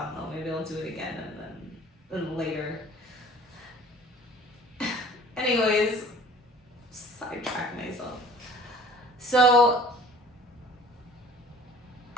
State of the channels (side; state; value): both; normal; correlation 0.48